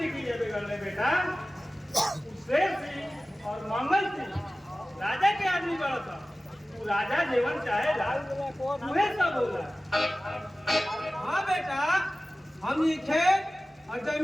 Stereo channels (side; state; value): both; normal; correlation 0.96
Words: किए बिगड़ने बेटा। शेर सिंह और मंगल सिंह राजा के आदमी बड़ा था। तू राजा जीवन चाहे तुम्हें सब बोला। हाँ बेटा हमनी खेत और